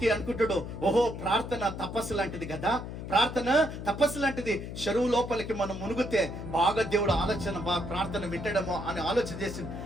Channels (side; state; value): left; noise; hum, 8 dB below the sound